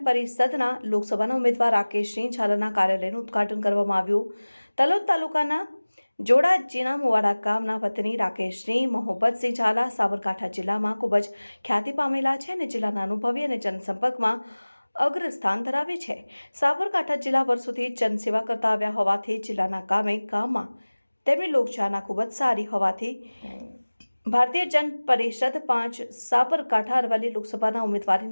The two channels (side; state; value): both; inverted; correlation -1.00